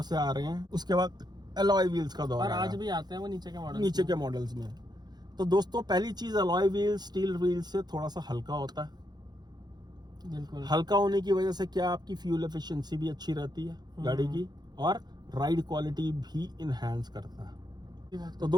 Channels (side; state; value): left; late; 0.20 ms